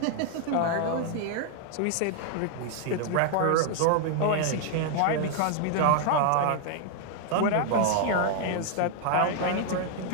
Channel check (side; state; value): both; different; correlation 0.00